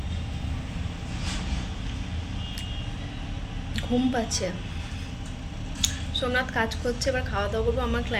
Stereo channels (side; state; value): both; identical; correlation 1.00